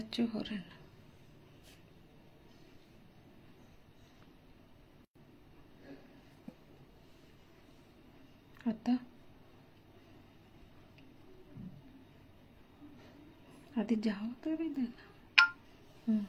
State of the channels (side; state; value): both; identical; correlation 1.00